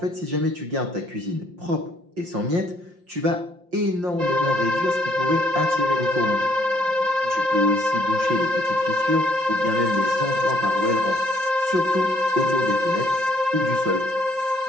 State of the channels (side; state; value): left; late; 5.7 ms